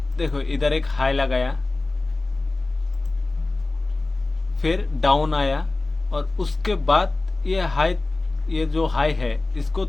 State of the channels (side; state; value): right; quieter; 3.2 dB